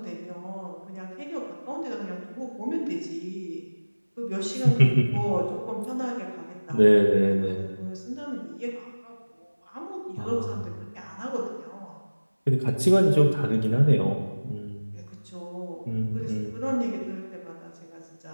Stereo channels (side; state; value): both; inverted; correlation -1.00